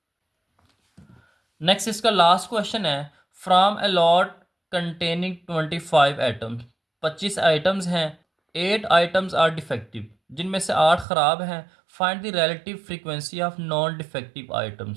नेक्स्ट इसका लास्ट क्वेश्चन है, from a lot containing 25 items. 25 items हैं, 8 आइटम्स आर डिफेक्टिव, जिनमें से 8 ख़राब हैं। Find the relative frequency of non defective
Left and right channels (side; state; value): left; drops out; at 11.1 s